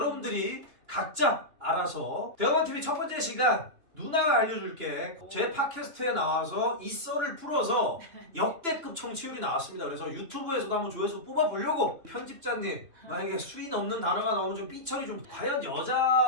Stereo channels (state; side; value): late; left; 2.9 ms